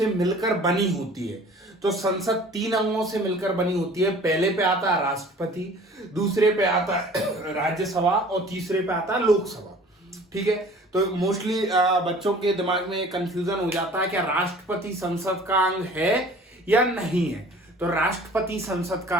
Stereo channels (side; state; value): both; normal; correlation 0.48